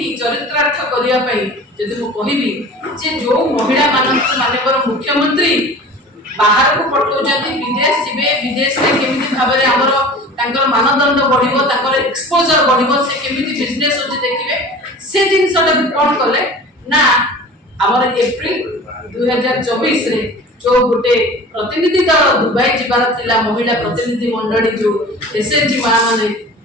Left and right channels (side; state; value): both; normal; correlation 0.40